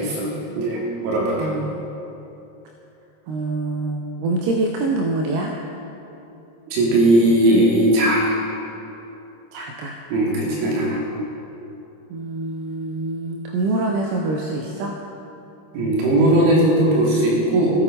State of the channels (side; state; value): left; late; 26 ms